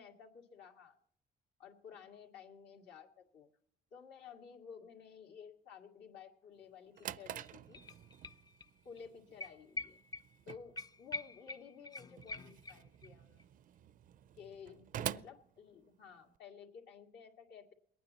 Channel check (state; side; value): normal; both; correlation -0.15